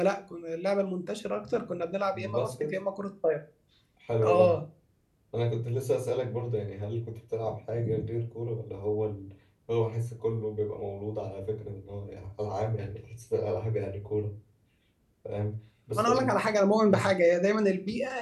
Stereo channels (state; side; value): identical; both; correlation 1.00